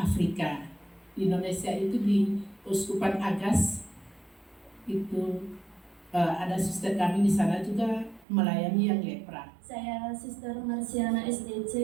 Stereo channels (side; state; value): left; drops out; at 8.2 s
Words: Di Indonesia itu di Uskupan Agas, itu ada suster kami di sana juga melayani yang lepra. Saya Suster Marsiana SDC.